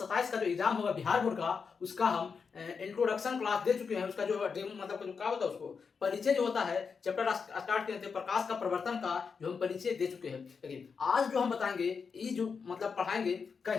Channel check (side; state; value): right; quieter; 5.6 dB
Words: का जो एग्जाम होगा बिहार बोर्ड का, उसका हम इंट्रोडक्शन क्लास दे चुके हैं। उसका जो मतलब जो क्या होता है, उसको परिचय जो होता है चैप्टर स्टार्ट किए थे प्रकाश का प्रवर्तन का, जो हम परिचय दे चुके हैं। लेकिन आज जो हम बताएंगे, ये जो मतलब पढ़ाएंगे,